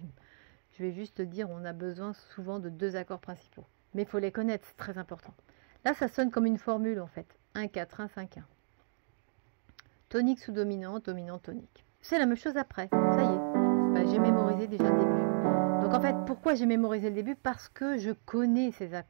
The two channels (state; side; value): silent; left; digital silence